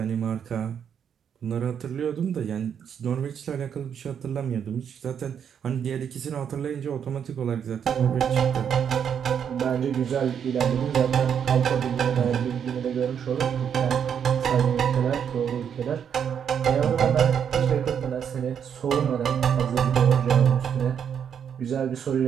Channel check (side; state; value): left; quieter; 8.1 dB